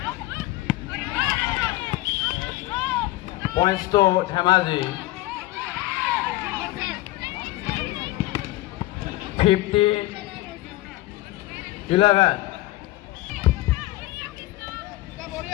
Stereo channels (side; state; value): right; quieter; 18.1 dB